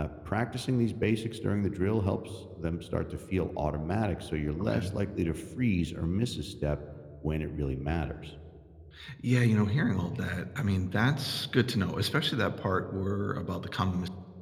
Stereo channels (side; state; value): both; identical; correlation 1.00